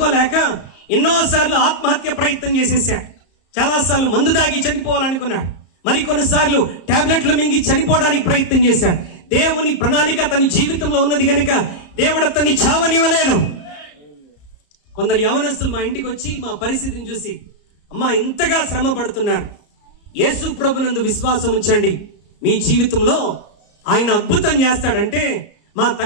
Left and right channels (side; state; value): right; late; 34 ms